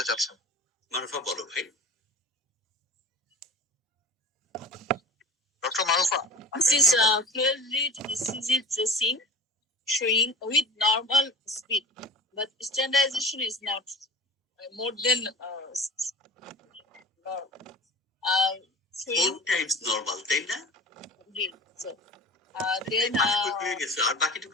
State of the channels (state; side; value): normal; both; correlation 0.37